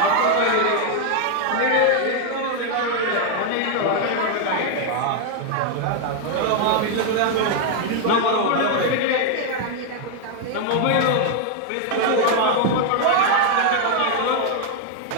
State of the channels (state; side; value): different; both; correlation 0.00